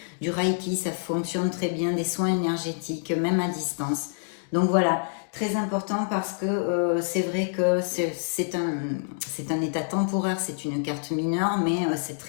du Reiki, ça fonctionne très bien, des soins énergétiques, même à distance. Donc voilà, très important parce que c'est vrai que c'est un état temporaire, c'est une carte mineure, mais c'est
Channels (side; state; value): right; silent; digital silence